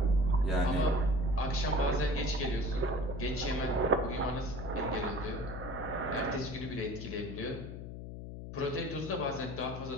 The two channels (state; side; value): noise; left; hum, 9 dB below the sound